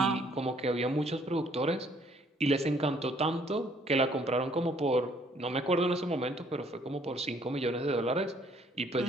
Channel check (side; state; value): both; normal; correlation 0.63